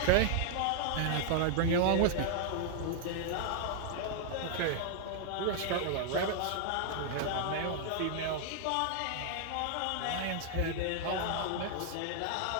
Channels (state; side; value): different; both; correlation 0.00